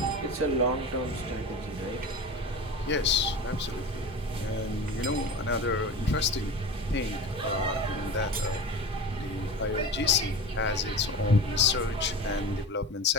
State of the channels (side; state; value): both; normal; correlation 0.31